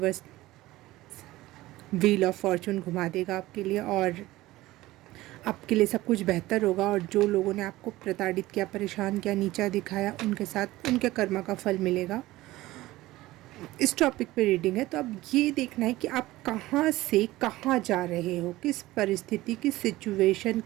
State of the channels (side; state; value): left; quieter; 17.7 dB